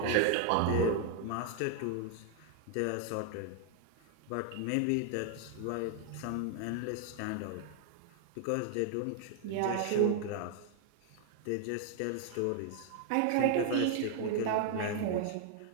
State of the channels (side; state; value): both; different; correlation 0.00